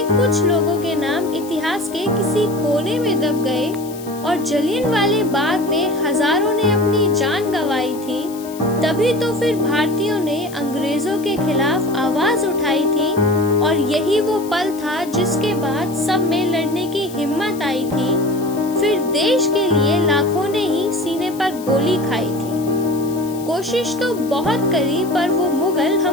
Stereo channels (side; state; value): left; noise; hiss, 18 dB below the sound